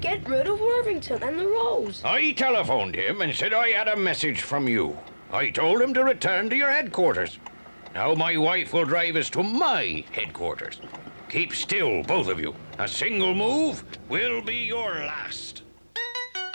rid of Worthington and the Rose? I telephoned him and said I had a message from you. I told him to return to your headquarters. Now my wife will drive us to my headquarters. Keep still, both of you. A single move will be your last.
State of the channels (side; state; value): both; inverted; correlation -1.00